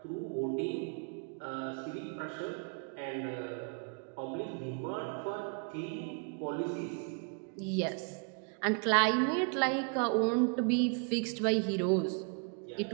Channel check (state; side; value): quieter; left; 39.4 dB